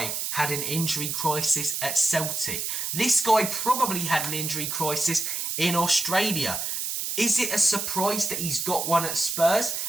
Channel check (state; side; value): noise; right; hiss, 2 dB below the sound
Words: had an injury crisis at Celtic. This guy probably had an injury crisis in Australia. Is it a surprise that he's got one at Spurs?